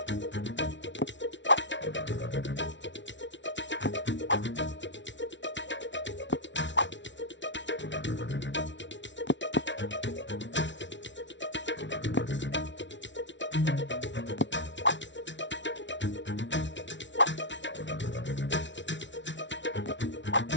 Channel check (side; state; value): right; late; 0.54 ms